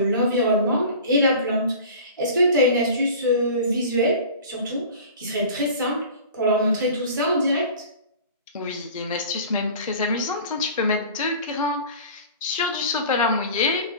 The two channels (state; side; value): inverted; both; correlation -0.40